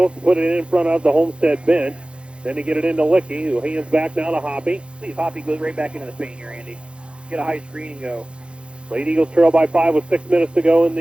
put it in front of the Homestead bench. Then they get it into Licky, who hands back now to Hoppy. See if Hoppy goes right back into the paint here, Andy. Get a high screen and go. Lady Eagles trail by 5 with 6 minutes to go in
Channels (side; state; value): left; late; 0.057 ms